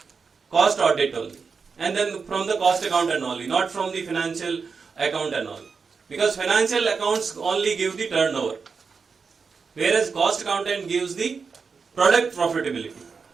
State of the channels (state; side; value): quieter; left; 5.2 dB